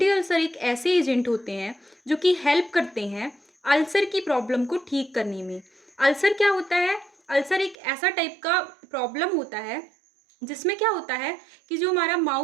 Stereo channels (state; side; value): drops out; left; at 7.8 s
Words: ulcer एक ऐसे एजेंट होते हैं जो कि हेल्प करते हैं अल्सर की प्रॉब्लम को ठीक करने में। अल्सर क्या होता है? अल्सर एक ऐसा टाइप का प्रॉब्लम होता है जिसमें क्या होता है कि जो हमारा